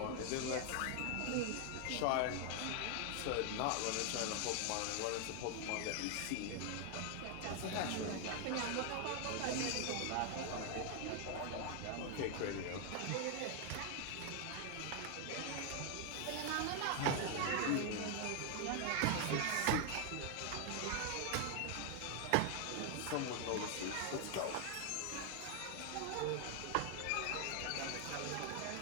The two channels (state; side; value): different; both; correlation 0.00